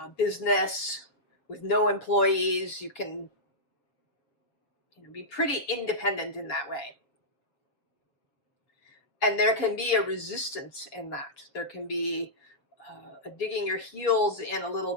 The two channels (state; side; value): late; right; 7.1 ms